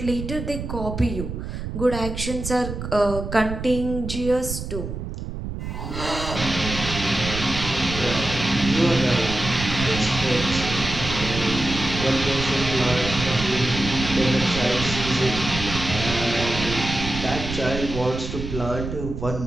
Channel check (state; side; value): noise; right; rumble, 6 dB below the sound